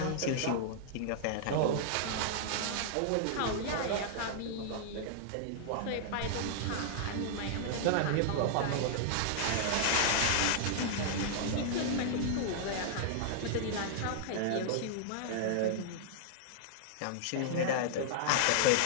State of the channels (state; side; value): different; both; correlation -0.01